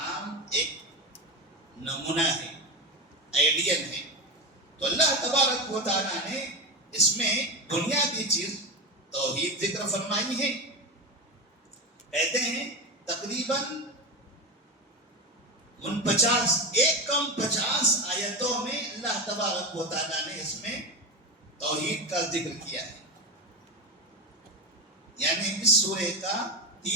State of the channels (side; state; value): both; normal; correlation 0.18